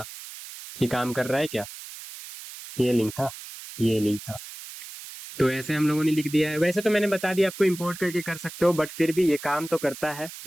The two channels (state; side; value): noise; right; hiss, 13 dB below the sound